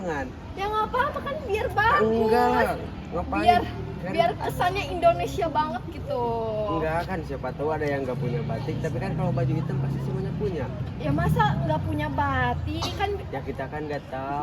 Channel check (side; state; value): both; identical; correlation 1.00